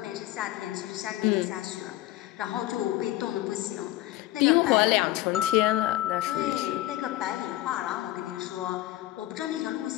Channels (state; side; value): quieter; right; 15.8 dB